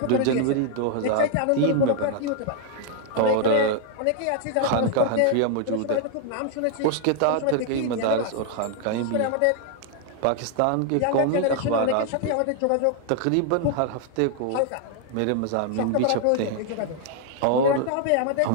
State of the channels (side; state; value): both; different; correlation 0.00